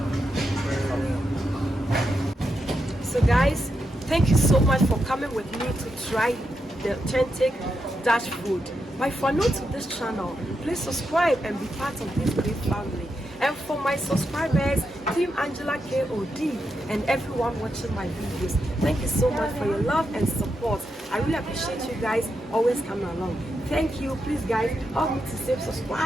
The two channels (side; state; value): both; normal; correlation 0.85